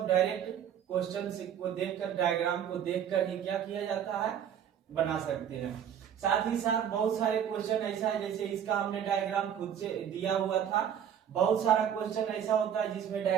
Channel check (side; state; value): left; quieter; 9.0 dB